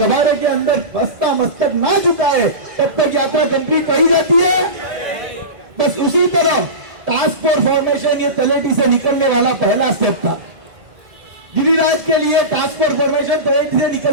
के अंदर बस्ता मस्तक ना झुकाए तब तक यात्रा कंप्लीट कही जाती है। बस उसी तरह टास्क फोर्स फॉर्मेशन ये तलेटी से निकलने वाला पहला स्टेप था। गिरिराज के लिए टास्क फोर्स फॉर्मेशन तलेटी से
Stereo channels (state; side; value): late; left; 2.0 ms